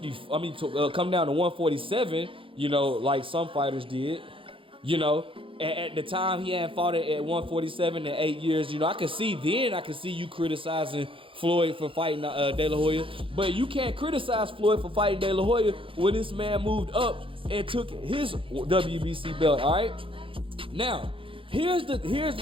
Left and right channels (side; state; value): left; late; 0.25 ms